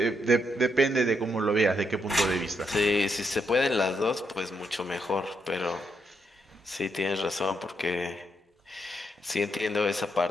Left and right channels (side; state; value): both; normal; correlation 0.79